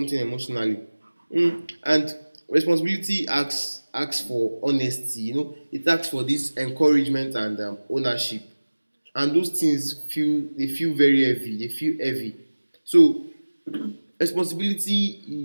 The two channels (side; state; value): both; inverted; correlation -1.00